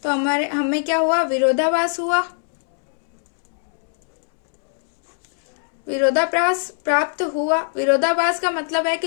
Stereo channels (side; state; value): right; silent; 65 dB below the other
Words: तो हमें क्या हुआ? विरोधाभास हुआ। विरोधाभास प्राप्त हुआ। विरोधाभास का मतलब है कि